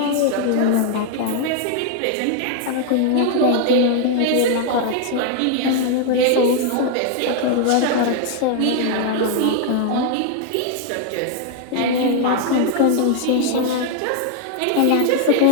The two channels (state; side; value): different; both; correlation 0.00